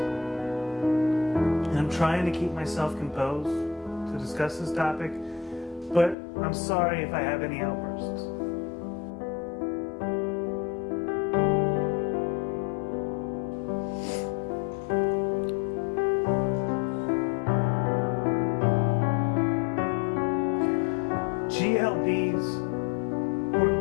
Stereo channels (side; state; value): right; drops out; at 6.2 s